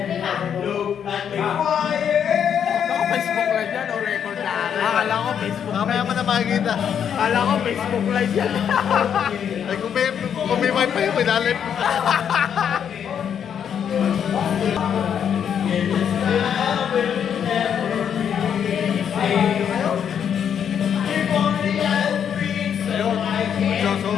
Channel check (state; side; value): quieter; right; 8.3 dB